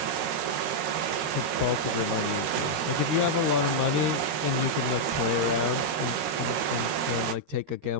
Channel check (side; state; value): left; late; 13 ms